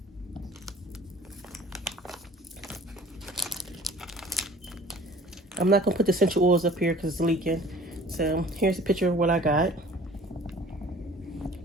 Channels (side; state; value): both; normal; correlation 0.48